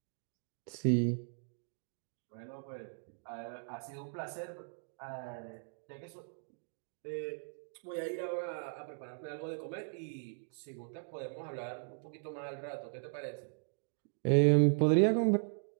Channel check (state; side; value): silent; left; digital silence